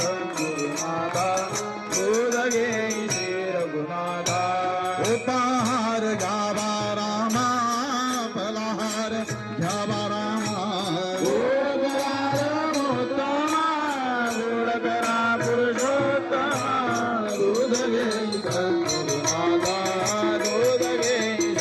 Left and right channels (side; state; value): both; identical; correlation 1.00